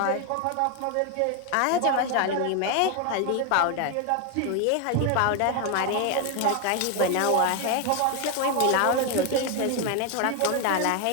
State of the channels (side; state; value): both; different; correlation 0.01